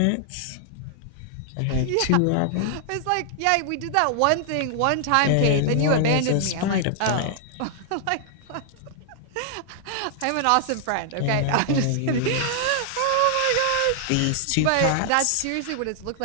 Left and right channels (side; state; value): both; different; correlation 0.00